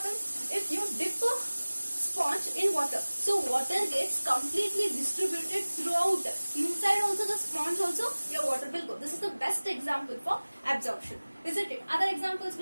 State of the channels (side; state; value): both; inverted; correlation -1.00